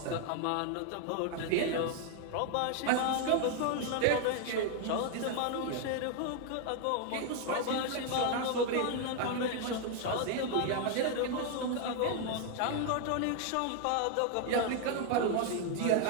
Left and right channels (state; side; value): different; both; correlation 0.00